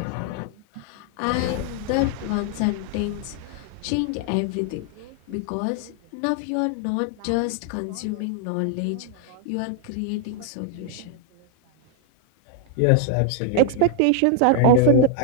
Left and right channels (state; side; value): different; both; correlation 0.00